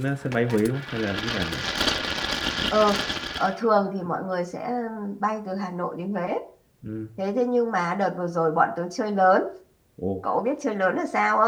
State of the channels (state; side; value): identical; both; correlation 1.00